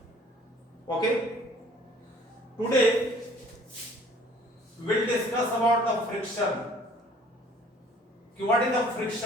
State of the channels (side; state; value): both; normal; correlation 0.54